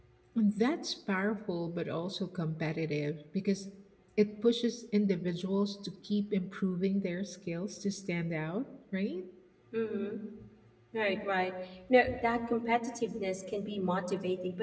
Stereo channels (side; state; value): both; identical; correlation 1.00